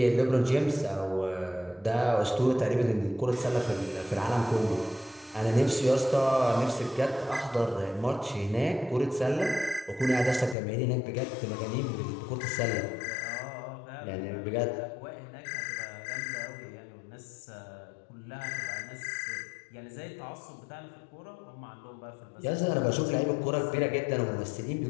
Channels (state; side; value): drops out; right; at 10.6 s